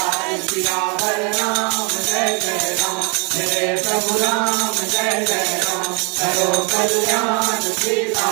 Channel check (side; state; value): left; quieter; 33.9 dB